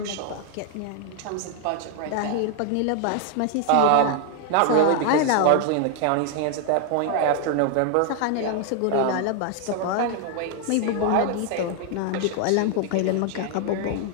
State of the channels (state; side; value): different; both; correlation 0.00